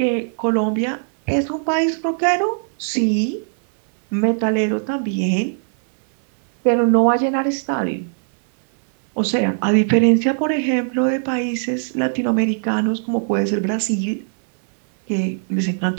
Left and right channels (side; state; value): left; silent; 65 dB below the other